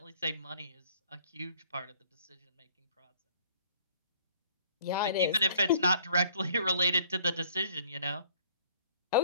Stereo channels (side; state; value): both; inverted; correlation -0.58